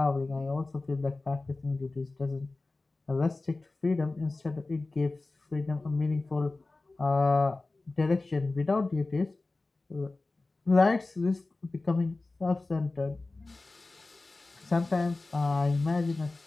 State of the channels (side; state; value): right; quieter; 3.3 dB